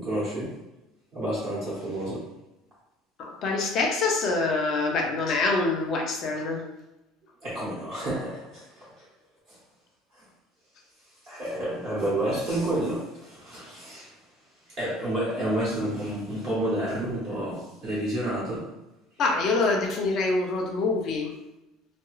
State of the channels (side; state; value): both; normal; correlation 0.52